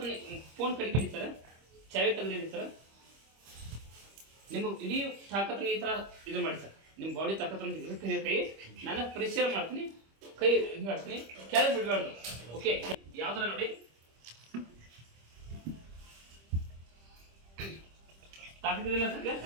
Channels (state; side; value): late; left; 25 ms